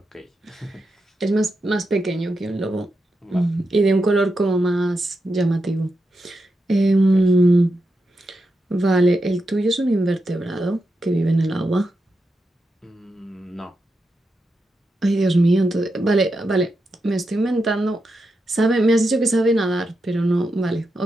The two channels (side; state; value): both; normal; correlation 0.87